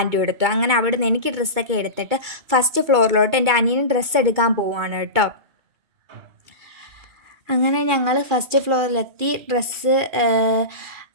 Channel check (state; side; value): late; left; 2.3 ms